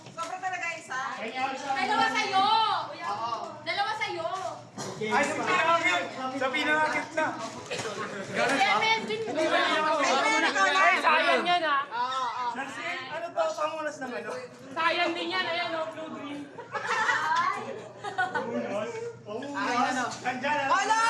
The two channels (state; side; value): identical; both; correlation 1.00